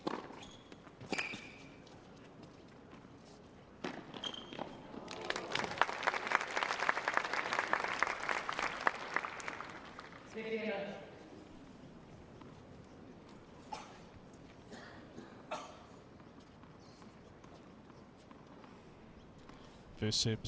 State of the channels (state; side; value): identical; both; correlation 1.00